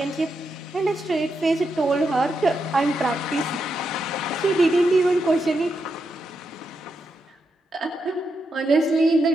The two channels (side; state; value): both; normal; correlation 0.84